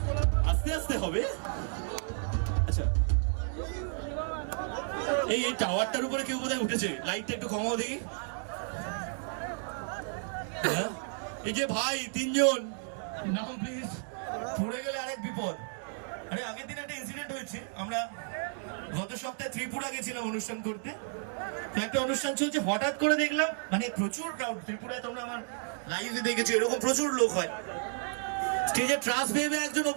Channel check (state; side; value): silent; left; 56 dB below the other